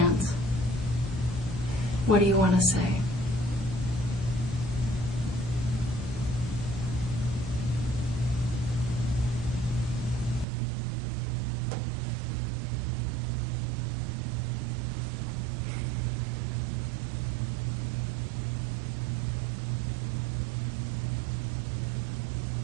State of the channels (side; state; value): left; drops out; at 10.5 s